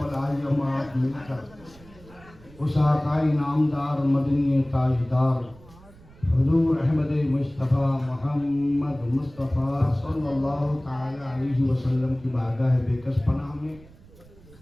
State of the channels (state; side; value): noise; right; rumble, 23 dB below the sound